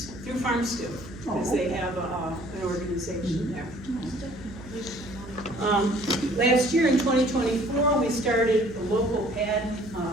through Farm Stew, because they have an organization there. Last year in 2024, we started the local pad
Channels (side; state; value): right; noise; hum, 17 dB below the sound